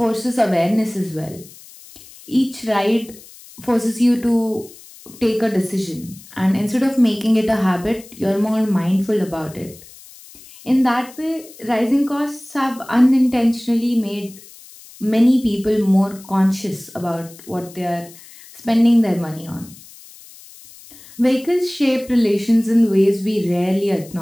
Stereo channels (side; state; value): left; noise; hiss, 21 dB below the sound